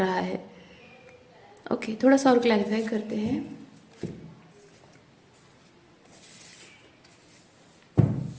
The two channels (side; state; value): both; identical; correlation 1.00